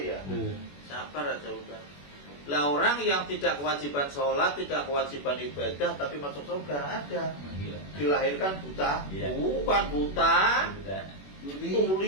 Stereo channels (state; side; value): late; right; 21 ms